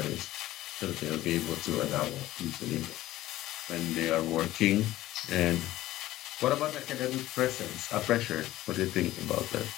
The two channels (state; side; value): quieter; right; 15.6 dB